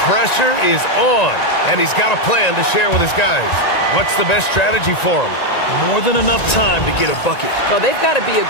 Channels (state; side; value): late; right; 1.9 ms